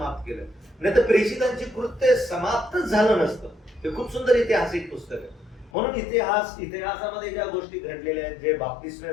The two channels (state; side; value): drops out; right; at 5.7 s